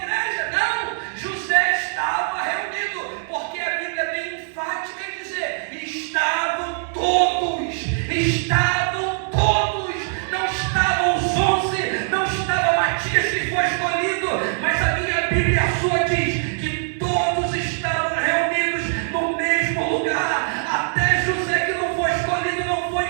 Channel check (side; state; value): left; silent; 64 dB below the other